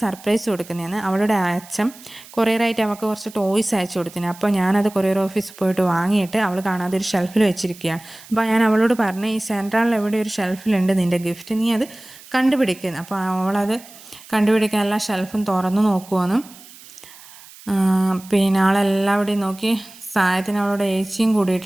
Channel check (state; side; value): noise; right; hiss, 20 dB below the sound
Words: സർപ്രൈസ് കൊടുക്കുന്നതാണ്. അവളുടെ അച്ഛൻ കൊറിയറായിട്ട് അവൾക്ക് കുറച്ച് ടോയ്സ് അയച്ചു കൊടുത്തിന്. അപ്പോൾ ഞാനത് കൊറിയർ ഓഫീസിൽ പോയിട്ട് വാങ്ങിയിട്ട് അവൾ കാണാതെ ഒരു ഷെൽഫിൽ വെച്ചിരിക്കുകയാണ്. അപ്പോൾ ഞാൻ അവളോട് പറഞ്ഞു, ഈ സെൻട്രലിൽ എവിടെ ഒരു ഷെൽഫിലുണ്ട് നിൻ്റെ ഗിഫ്റ്റ്, നീ അത് കണ്ടുപിടിക്കുന്നു. അപ്പോൾ അവളത് കണ്ടുപിടിക്കാൻ എല്ലാ ഷെൽഫും തുറന്നു നോക്കുവാണ്. പിന്നെ ആളെല്ലാവിടെയും നോക്കി. സാധനത്തിന് അവളോട് ഏച്ചിയും